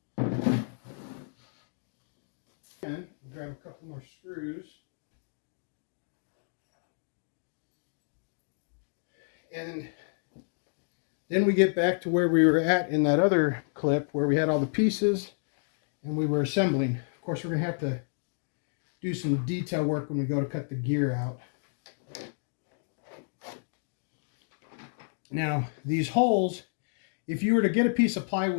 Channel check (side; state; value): right; silent; digital silence